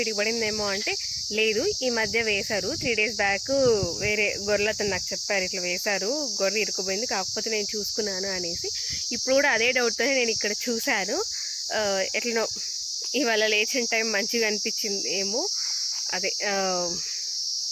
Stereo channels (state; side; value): identical; both; correlation 1.00